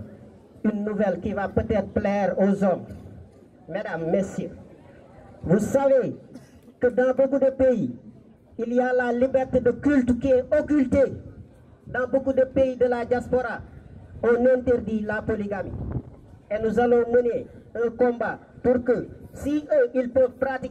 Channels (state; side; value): identical; both; correlation 1.00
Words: une nouvelle qui va peut-être plaire aux hommes. Mesdames, messieurs, vous savez que dans beaucoup de pays, il y a la liberté de culte qui est occultée. Dans beaucoup de pays de la diaspora, on interdit la polygamie. Et nous allons mener un combat pour que, si eux, ils peuvent